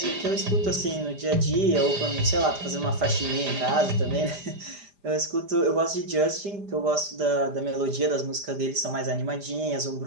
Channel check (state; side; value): late; left; 5.0 ms